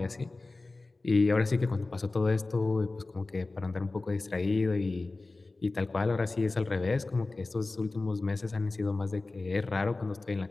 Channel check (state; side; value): quieter; right; 3.3 dB